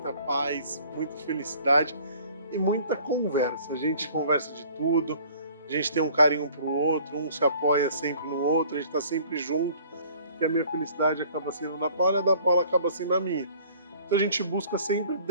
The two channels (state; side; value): inverted; both; correlation -0.53